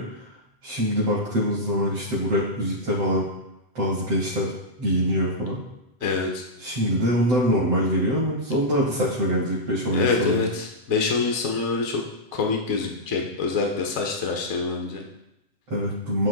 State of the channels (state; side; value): late; left; 8.0 ms